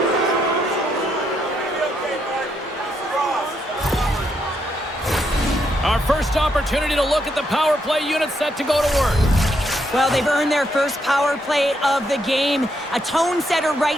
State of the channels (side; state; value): both; normal; correlation 0.77